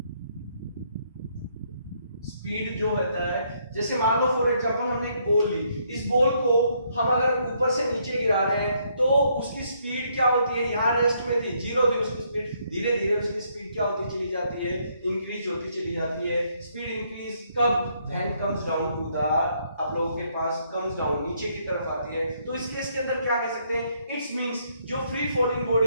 स्पीड जो होता है, जैसे मान लो फॉर एग्जांपल हमने एक बॉल ली, इस बॉल को हम अगर ऊपर से नीचे गिरा रहे हैं तो उसकी स्पीड क्या होती है, यहाँ रेस्ट में थी, जीरो थी उसकी स्पीड, धीरे धीरे उसकी स्पीड क्या होती चली जाती है, इंक्रीज होती चली जाती है. स्पीड इंक्रीज कब, when comes down to the, आप लोगों के पास कम्स डाउन, नीचे की तरफ आती है. तो इस केस के अंदर क्या कह सकते हैं, इट्स मींस जो फ्री फॉलिंग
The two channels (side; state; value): both; inverted; correlation -0.71